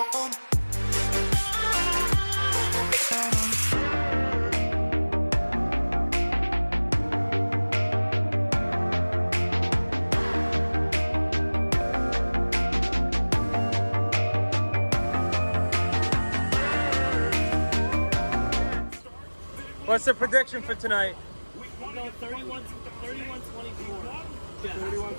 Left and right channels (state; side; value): inverted; both; correlation -1.00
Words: What's the prediction for tonight? No, 31-24.